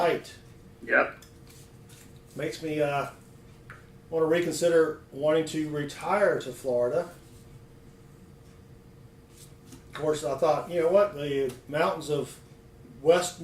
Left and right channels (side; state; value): both; identical; correlation 1.00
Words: Yep. Makes me want to reconsider wanting to retire to Florida. Of course, I thought, you know what, the mountains of West